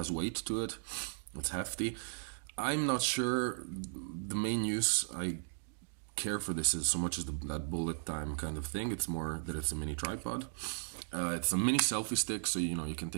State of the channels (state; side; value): silent; left; digital silence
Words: weight to it. It's hefty. I'm not sure the main use I care for this is so much as that bullet time kind of thing. It's more that it's a mini tripod. It's a mini selfie stick, so you know you can